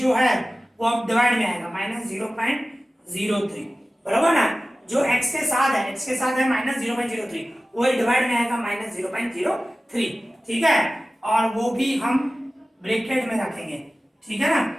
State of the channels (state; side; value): normal; both; correlation 0.96